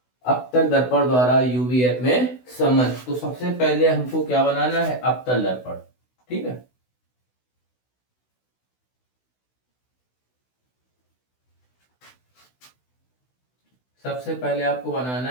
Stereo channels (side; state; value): right; late; 16 ms